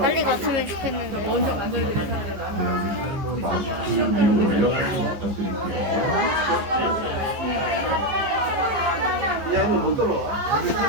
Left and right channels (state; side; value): late; left; 15 ms